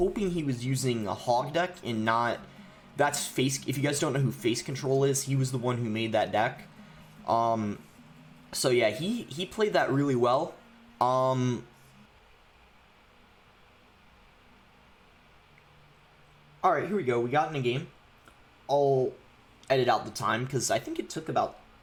he was using a Hog deck and not... That's Face... If you guys don't know who Face Control is, he was the one who made that deck. So yeah, he played that really well. Alright, here we go. We got in a game. I'll edit out the time, because I think it took about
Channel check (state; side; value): identical; both; correlation 1.00